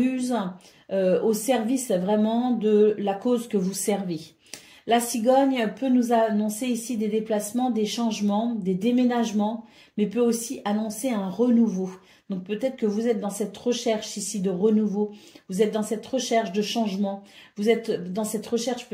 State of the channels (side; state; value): both; identical; correlation 1.00